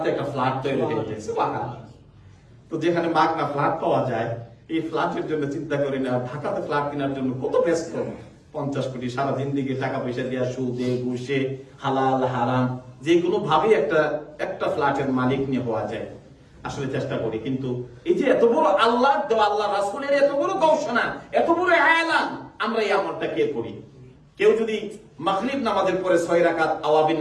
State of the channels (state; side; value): identical; both; correlation 1.00